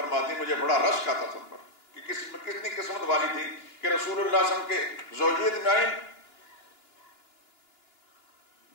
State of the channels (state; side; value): late; right; 2.9 ms